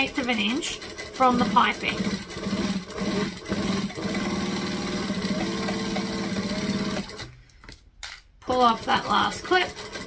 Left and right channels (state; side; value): identical; both; correlation 1.00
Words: of an inch from the piping. Pull off that last clip.